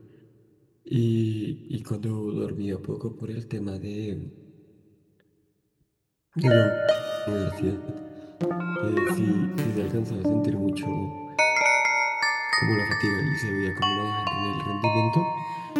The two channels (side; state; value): both; identical; correlation 1.00